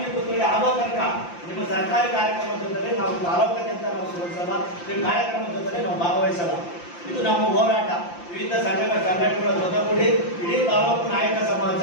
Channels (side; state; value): right; late; 5.8 ms